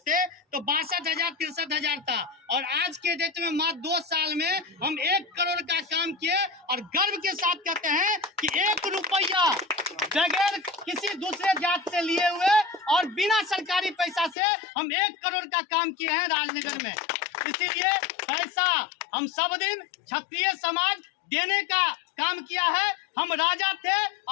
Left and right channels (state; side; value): drops out; right; at 14.4 s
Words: तो 62,000 63,000 था, और आज के डेट में मात्र 2 साल में हम 1 करोड़ का काम किए। और गर्व के साथ कहते हैं कि 1 रुपया बगैर किसी दूसरे जात से लिए हुए और बिना सरकारी पैसा से हम 1 करोड़ का काम किए हैं राजनगर में। इसीलिए पैसा हम सब दिन क्षत्रिय समाज देने का काम किया है। हम राजा थे